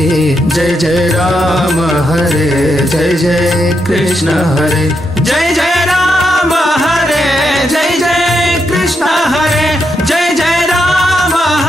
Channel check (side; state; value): both; normal; correlation 0.82